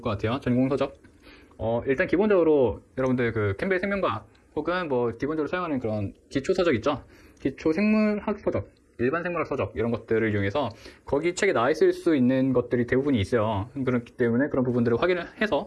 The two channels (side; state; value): both; identical; correlation 1.00